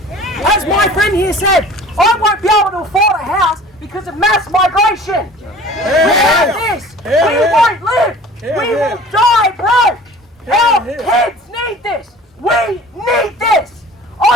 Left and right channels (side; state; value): both; normal; correlation 0.45